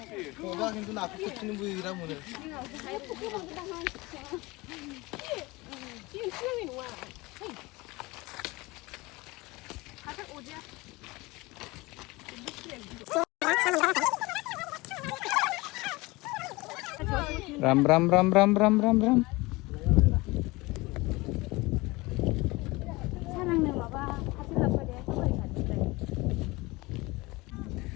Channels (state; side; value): quieter; right; 22.5 dB